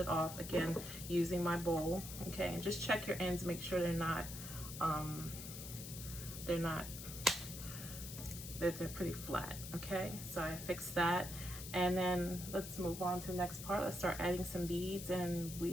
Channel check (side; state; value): left; noise; hiss, 10 dB below the sound